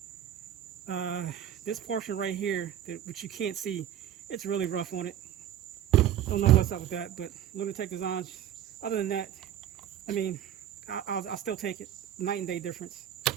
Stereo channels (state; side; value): quieter; left; 10.8 dB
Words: this portion right here, which you can't see, it's really rough on it. Don't know what's up with that, but Lunatech Designs, other than that, I mean, I'll still take it. Night and day difference.